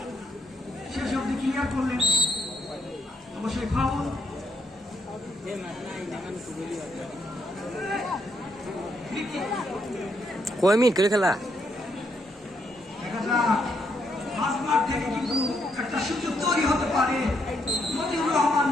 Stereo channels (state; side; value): normal; both; correlation 0.76